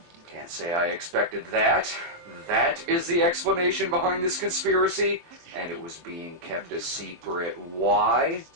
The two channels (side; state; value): left; late; 23 ms